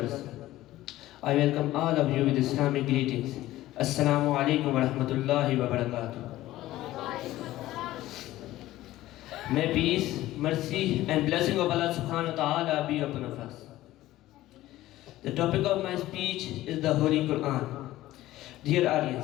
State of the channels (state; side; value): quieter; right; 15.7 dB